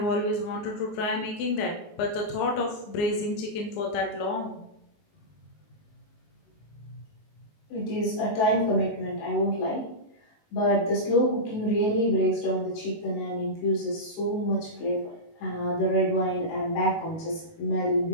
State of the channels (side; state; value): right; late; 19 ms